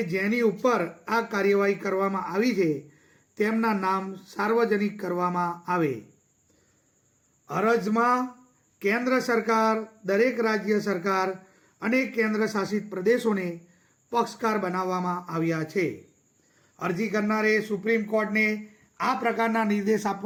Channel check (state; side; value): identical; both; correlation 1.00